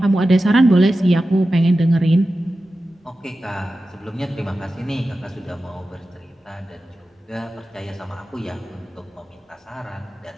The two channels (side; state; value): both; normal; correlation 0.93